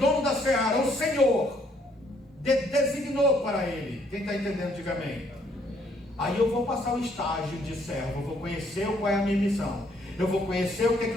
da seara, o Senhor designou para ele. Quem está entendendo, diga amém. Aí eu vou passar o estágio de servo, eu vou conhecer qual é a minha missão, eu vou conhecer o que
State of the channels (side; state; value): both; normal; correlation 0.67